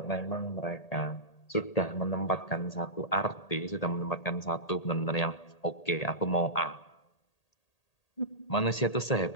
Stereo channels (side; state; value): right; late; 1.8 ms